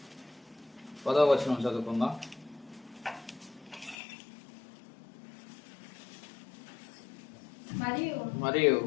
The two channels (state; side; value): drops out; right; at 4.0 s